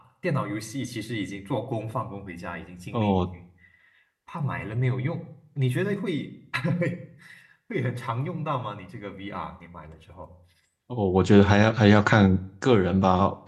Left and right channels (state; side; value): identical; both; correlation 1.00